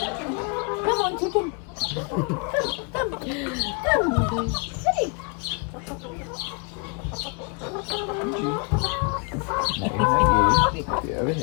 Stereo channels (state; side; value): quieter; right; 36.7 dB